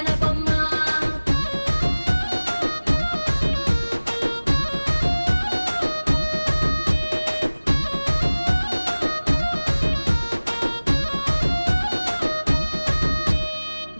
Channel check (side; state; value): both; inverted; correlation -1.00